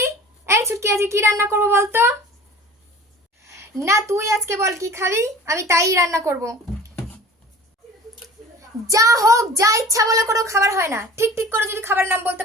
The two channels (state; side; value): normal; both; correlation 0.43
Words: এই ছুটকি, আজকে কি রান্না করবো বলতো? না তুই আজকে বল কি খাবি, আমি তাই রান্না করব। যা হোক, যা ইচ্ছা বলে কোনো খাবার হয় না। ঠিক ঠিক করে যদি খাবার নাম বলতে